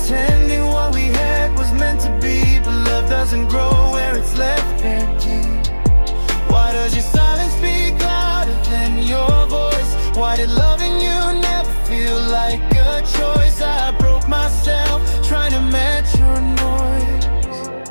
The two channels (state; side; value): inverted; both; correlation -1.00